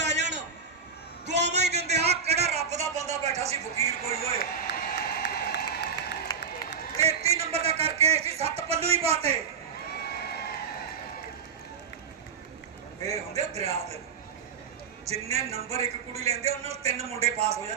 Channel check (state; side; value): quieter; left; 6.1 dB